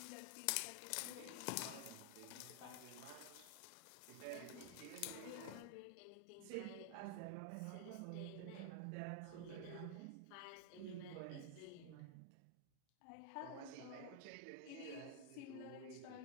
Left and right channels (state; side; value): different; both; correlation 0.00